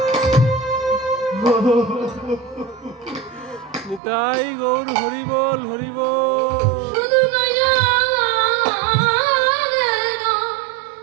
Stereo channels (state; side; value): drops out; left; at 4.0 s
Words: নিতাই গৌর হরি বল হরি বল। শুধু